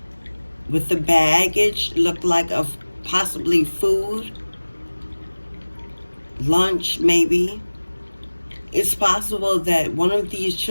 with the baggage, looked like of possibly food, lunch maybe. It's possible that one of these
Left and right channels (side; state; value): both; inverted; correlation -1.00